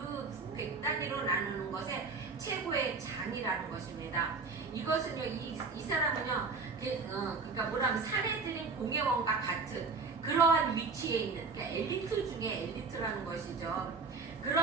100단위로 나누는 것에 최고의 장이라는 것입니다. 이것은요 이 사람은요 그러니까 뭐라면 사내들인 공예원과 같은 그러한 위치에 있는, 그러니까 엘리트 중에 엘리트라는 것이죠.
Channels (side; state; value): left; quieter; 4.5 dB